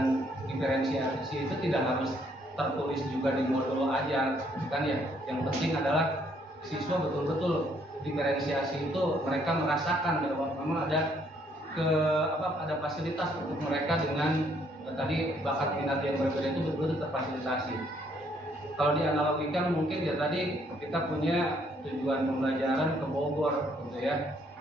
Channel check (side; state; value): both; normal; correlation 0.68